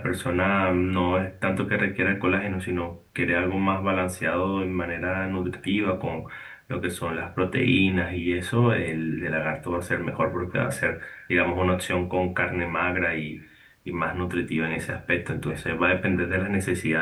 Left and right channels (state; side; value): identical; both; correlation 1.00